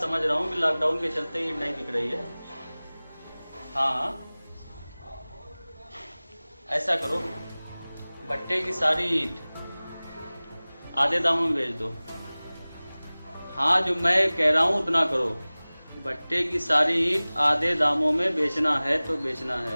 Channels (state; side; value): inverted; both; correlation -0.99